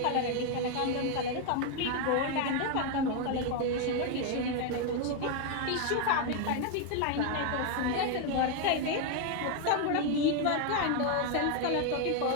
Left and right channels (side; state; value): both; different; correlation 0.01